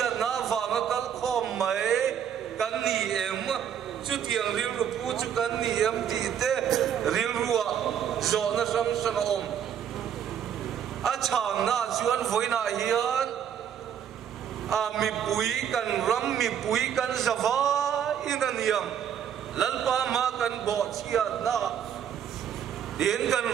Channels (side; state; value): left; quieter; 8.9 dB